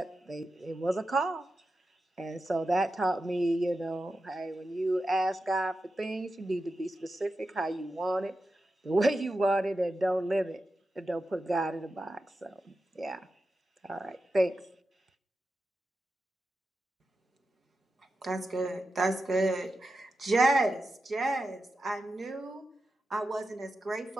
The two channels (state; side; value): normal; both; correlation 0.91